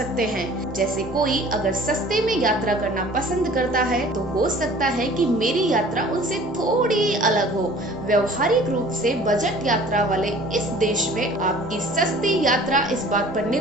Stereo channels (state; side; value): normal; both; correlation 0.49